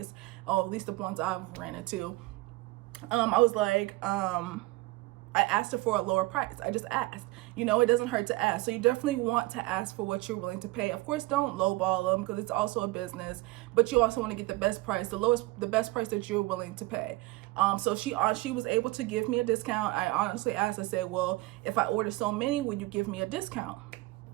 at least the ones I've ran into, I was like, I asked her for a lower price. I just asked. You know, it doesn't hurt to ask. So you definitely want to ask for what you're willing to pay. Of course, don't lowball them because it's also a business, but you also want to get the best price, the best price that you're willing to pay. So she was able to give me a discount. I honestly asked, I said, well, if I order so many, would you give me a discount?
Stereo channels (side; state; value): left; quieter; 20.5 dB